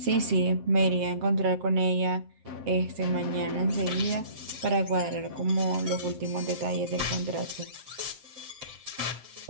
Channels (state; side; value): late; left; 7.7 ms